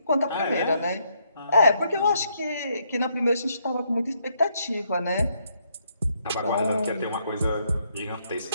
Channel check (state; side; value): inverted; both; correlation -0.74